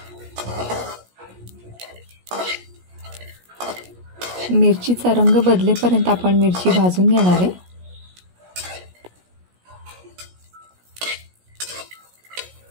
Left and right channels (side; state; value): left; late; 17 ms